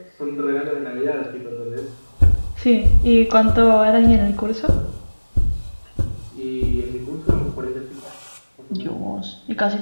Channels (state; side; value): inverted; both; correlation -1.00